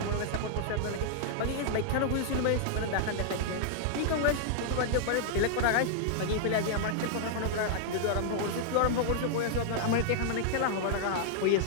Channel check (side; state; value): both; different; correlation -0.01